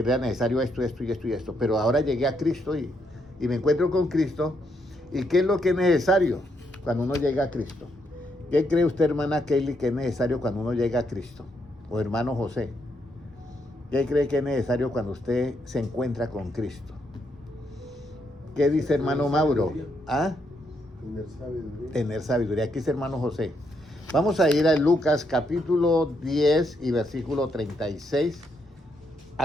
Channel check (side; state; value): both; normal; correlation 0.77